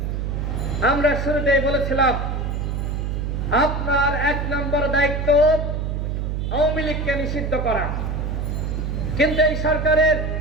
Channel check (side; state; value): right; noise; hum, 2 dB below the sound